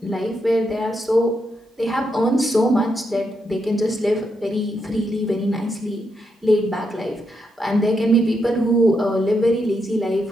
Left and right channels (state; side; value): normal; both; correlation 0.81